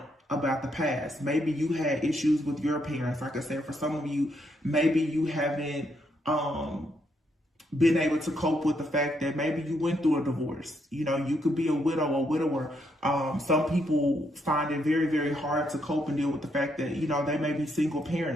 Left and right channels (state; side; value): normal; both; correlation 0.76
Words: about the past. Maybe you had issues with your parents. Like I said, for some of you, maybe you haven't been able to cope with the fact that maybe you went through a divorce. You know, you could be a widow or widower. Some people find it very, very hard to cope and deal with the fact that, you know, they may be single